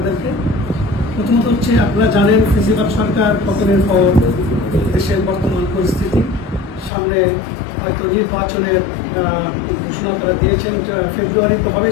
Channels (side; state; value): right; drops out; at 6.9 s